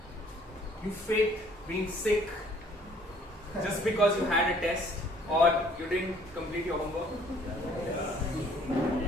you faked being sick just because you had a test or you didn't complete your homework?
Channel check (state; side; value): normal; both; correlation 0.59